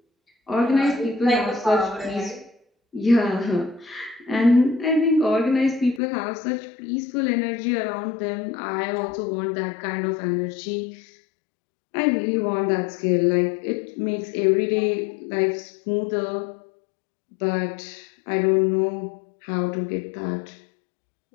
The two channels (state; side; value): drops out; right; at 6.0 s